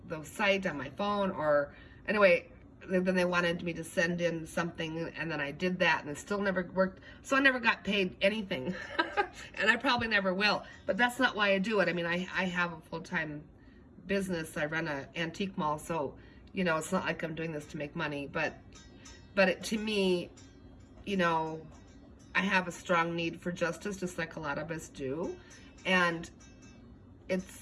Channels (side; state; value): both; identical; correlation 1.00